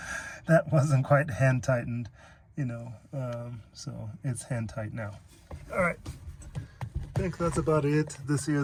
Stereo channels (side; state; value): both; identical; correlation 1.00